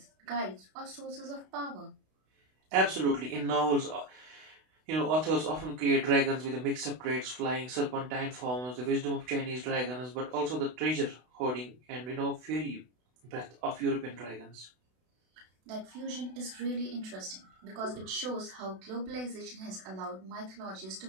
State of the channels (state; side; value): late; left; 32 ms